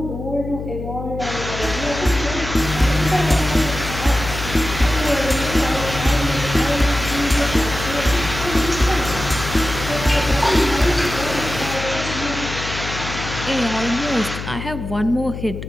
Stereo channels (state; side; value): noise; left; hum, 8 dB below the sound